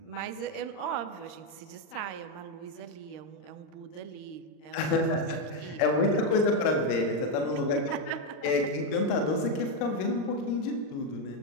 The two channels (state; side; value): late; right; 39 ms